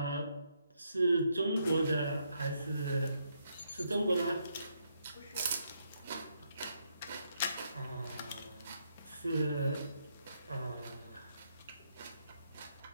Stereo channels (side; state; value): both; inverted; correlation -0.76